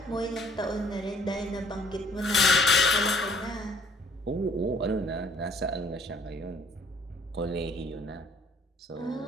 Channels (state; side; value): normal; both; correlation 0.59